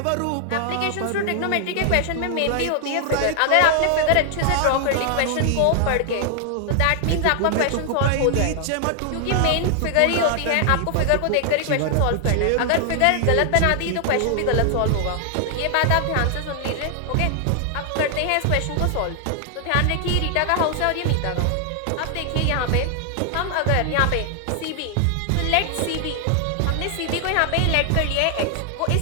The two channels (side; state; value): both; different; correlation 0.00